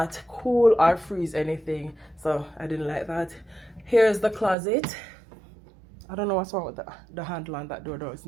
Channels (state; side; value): drops out; left; at 4.5 s